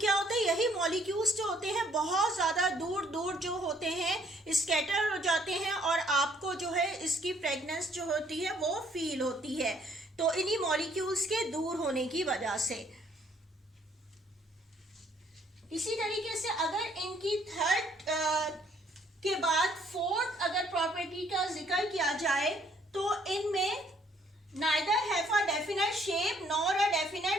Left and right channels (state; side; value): normal; both; correlation 0.64